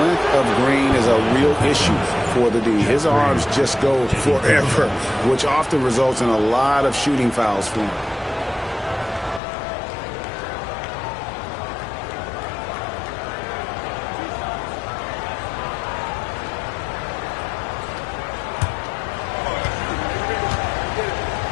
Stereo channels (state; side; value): drops out; right; at 9.4 s